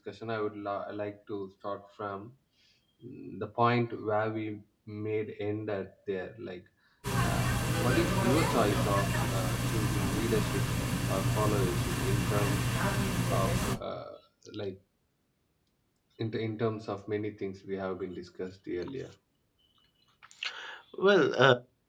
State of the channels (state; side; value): identical; both; correlation 1.00